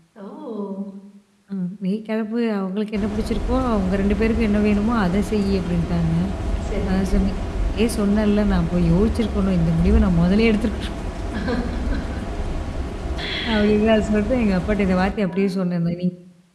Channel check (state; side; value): identical; both; correlation 1.00